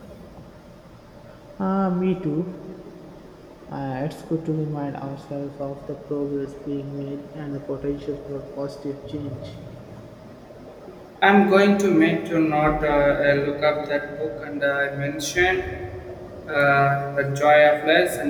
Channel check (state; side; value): identical; both; correlation 1.00